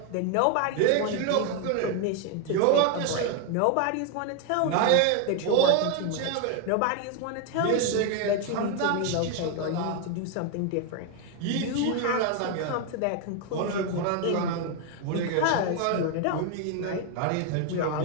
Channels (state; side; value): different; both; correlation 0.01